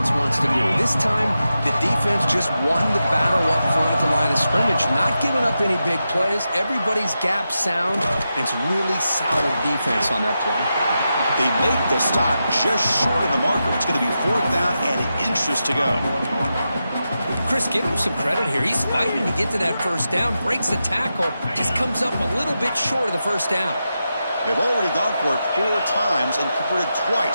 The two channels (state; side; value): inverted; both; correlation -0.89